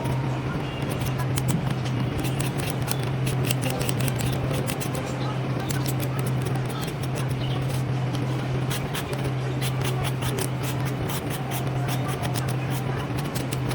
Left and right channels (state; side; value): identical; both; correlation 1.00